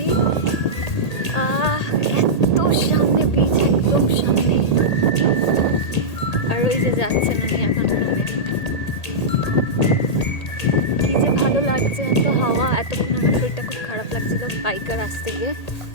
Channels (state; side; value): late; right; 1.8 ms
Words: এত সামনে বিচ, একদম সামনে। আর ওই যে যাচ্ছেন উনি এখন রুমে। কি যে ভালো লাগছে, এত হাওয়া। এতক্ষণ আমার শরীরটা খুব খারাপ লাগছিল বাইকার আসতে গিয়ে,